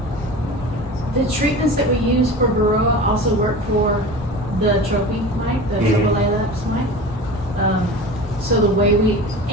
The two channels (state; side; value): normal; both; correlation 0.34